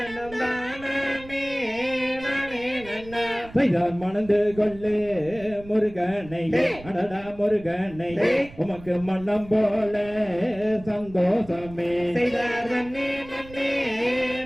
தானே நானே நன்னா செய்தார் மணந்து கொள்ளு முருகனை அடடா முருகனை உமக்கு மன்னம் போல சந்தோஷமே செய்தார் தன்னே நன்னே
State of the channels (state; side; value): noise; right; rumble, 18 dB below the sound